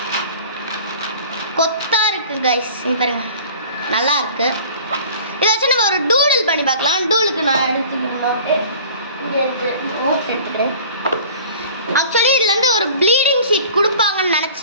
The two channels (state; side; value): inverted; both; correlation -0.45